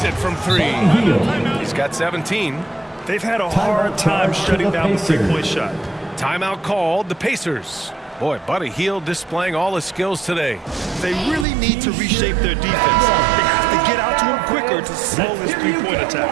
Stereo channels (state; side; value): drops out; left; at 11.5 s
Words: it from 3. He's got 17. They've had a hard time shutting down the 3-point shot. Timeout called the Pacers. Boy, Buddy Hield displaying all his skills today. They really need to reshape their defense. They have to get out to him quicker to slow this 3-point